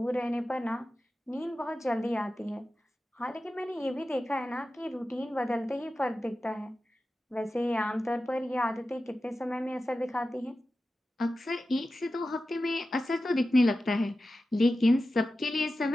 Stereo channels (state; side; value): normal; both; correlation 0.93